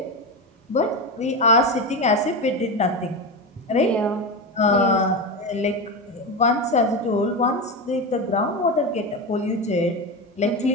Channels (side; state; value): both; normal; correlation 0.18